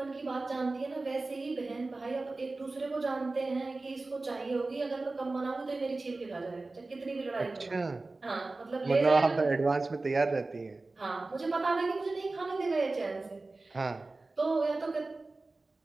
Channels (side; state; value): left; quieter; 3.3 dB